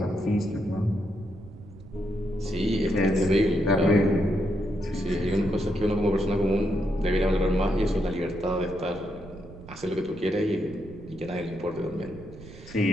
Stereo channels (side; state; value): right; noise; rumble, 17 dB below the sound